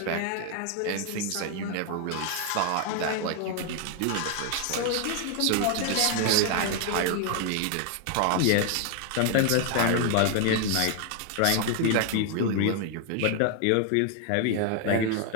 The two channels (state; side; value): different; both; correlation 0.00